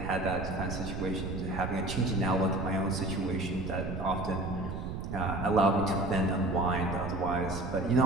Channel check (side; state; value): right; noise; rumble, 6 dB below the sound